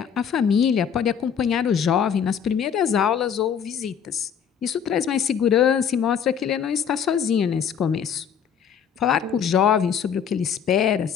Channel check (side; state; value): right; quieter; 7.7 dB